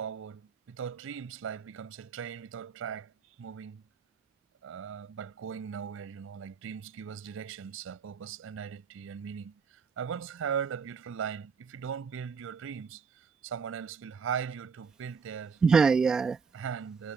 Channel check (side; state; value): left; quieter; 5.6 dB